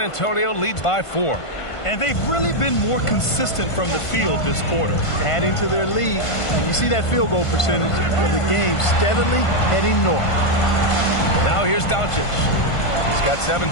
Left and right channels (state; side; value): late; right; 1.5 ms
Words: Antonio leads by 4. And they've really been more consistent from the field this quarter. Adding to their lead. And you see that field goal percentage of the game steadily heading north. Now here's Doncic. He's got